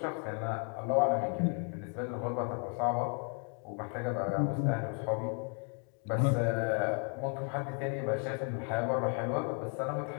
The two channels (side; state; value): right; quieter; 39.5 dB